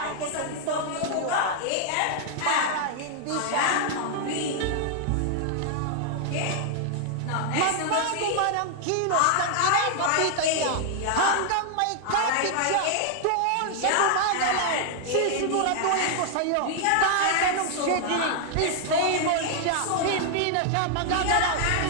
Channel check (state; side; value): different; both; correlation 0.00